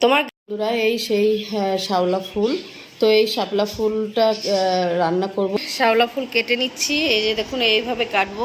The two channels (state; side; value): identical; both; correlation 1.00